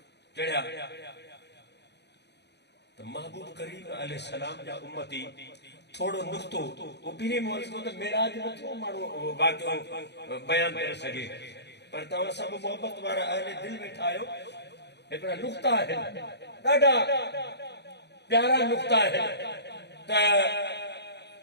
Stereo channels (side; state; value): right; late; 0.50 ms